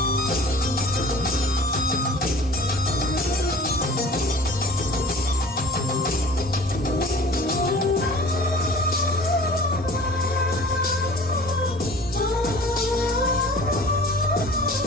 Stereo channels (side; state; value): both; normal; correlation 0.45